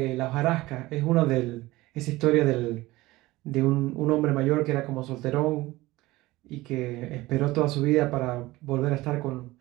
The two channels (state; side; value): quieter; left; 19.1 dB